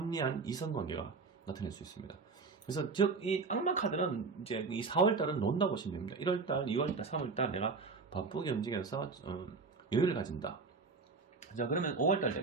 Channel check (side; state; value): left; quieter; 4.4 dB